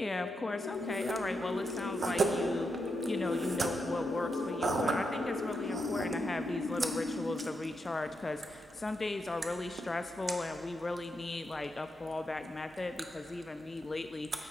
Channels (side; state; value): both; normal; correlation 0.83